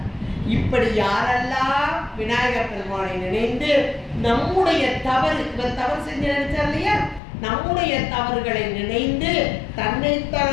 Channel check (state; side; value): drops out; right; at 7.2 s